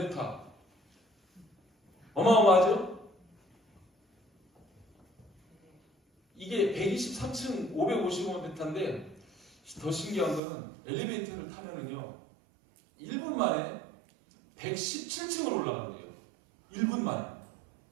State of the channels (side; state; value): left; drops out; at 10.4 s